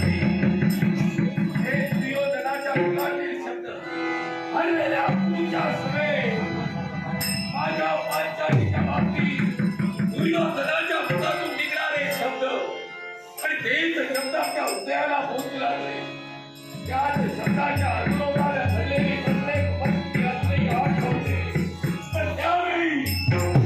हे दुर्योधनाच्या मुखातील शब्द हरलेल्या पूजा समेत माझ्या पांचालीच्या बाबतीत दुर्योधनाच्या मुखातून निघणारे शब्द आणि तेच शब्द आपल्या हृदयाला पोहोचू लागले त्याच शब्दाच्या अनुरोधाला घडलेली प्रत्येक व्यक्ती असलेली आठवते पण त्यावेळी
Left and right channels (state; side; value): identical; both; correlation 1.00